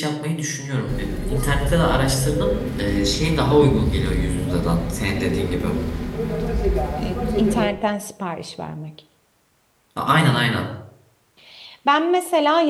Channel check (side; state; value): both; identical; correlation 1.00